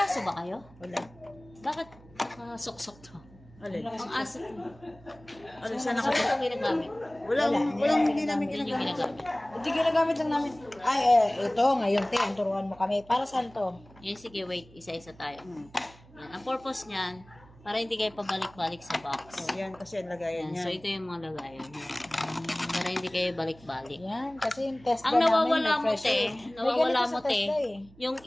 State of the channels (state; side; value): noise; right; hum, 24 dB below the sound